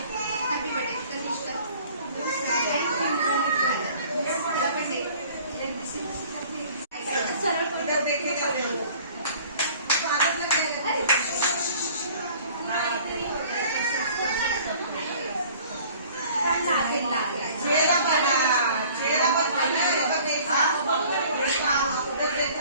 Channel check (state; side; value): inverted; both; correlation -0.50